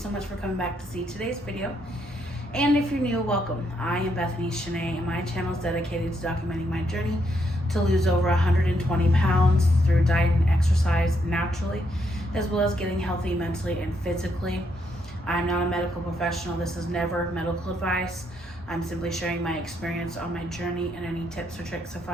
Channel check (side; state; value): both; normal; correlation 0.76